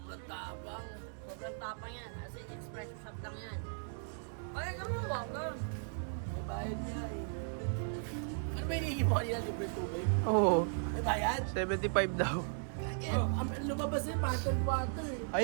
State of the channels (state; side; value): silent; left; digital silence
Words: tabang. Sobrang tapang yan. As in, espresso shop lang yan. Ay, ka mo, bangga. May bayad niya eh. Ano ba hinihingi mo kanina? Libre tubig? Oo, May bayad? 75 daw. Lumabas yung bottled water eh.